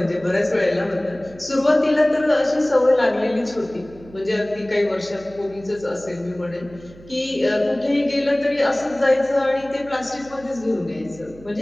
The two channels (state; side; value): noise; right; hum, 21 dB below the sound